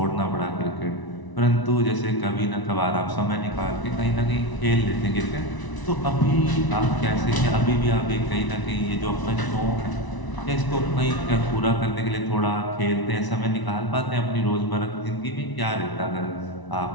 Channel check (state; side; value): late; right; 1.0 ms